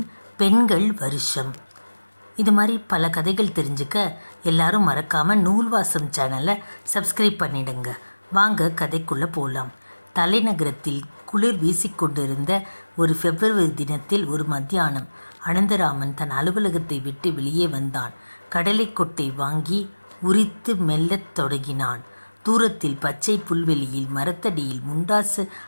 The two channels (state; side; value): inverted; both; correlation -1.00